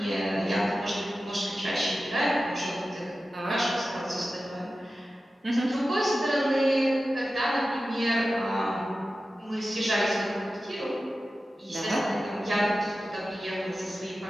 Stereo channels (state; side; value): normal; both; correlation 0.94